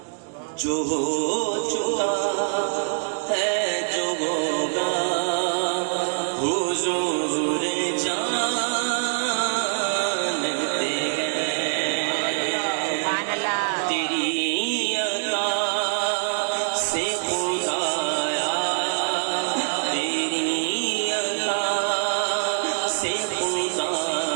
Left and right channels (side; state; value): left; silent; digital silence